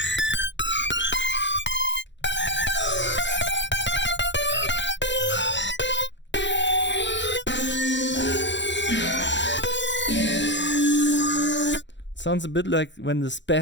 Sounds a bit like when the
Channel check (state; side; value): late; right; 0.53 ms